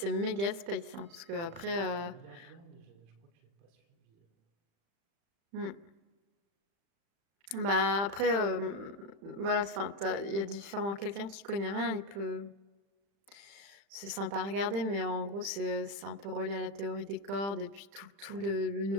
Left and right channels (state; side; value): late; left; 35 ms